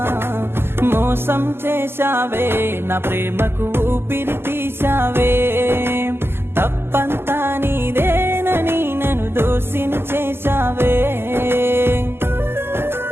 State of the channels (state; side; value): late; left; 0.11 ms